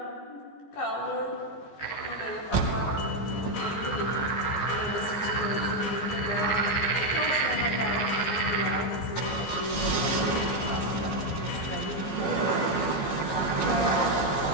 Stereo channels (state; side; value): late; right; 14 ms